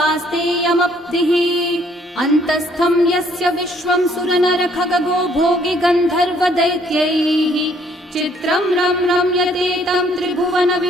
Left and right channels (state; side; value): normal; both; correlation 0.64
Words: अन्तस्थं यस्य विश्वं सुरनरखगो भोगि गन्धर्वदैत्यैः चित्रं रम्यते तं त्रिभुवन